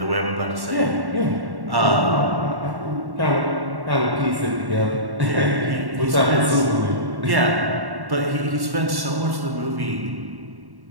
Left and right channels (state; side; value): late; left; 1.1 ms